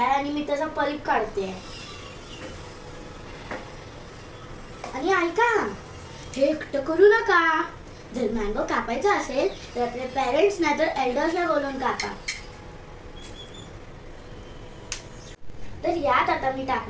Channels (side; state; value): both; identical; correlation 1.00